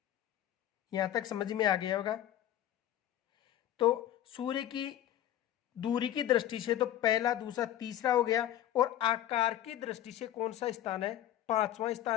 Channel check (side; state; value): right; quieter; 12.1 dB